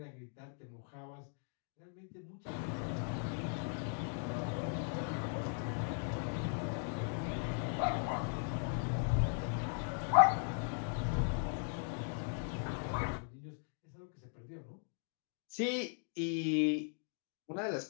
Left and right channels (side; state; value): right; silent; 52 dB below the other